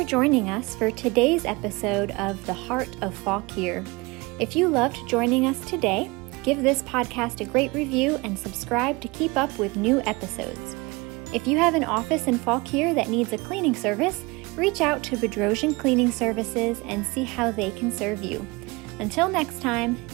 joining us for today's episode of The Heart of Fauquier. If you loved joining us today, give this podcast a great review and subscribe to keep up with new episodes. If you have an office in Fauquier that needs a cleaning service, reach out to Bedrosian Cleaning Services and see how they can serve you. Until next time,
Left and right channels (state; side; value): quieter; left; 24.8 dB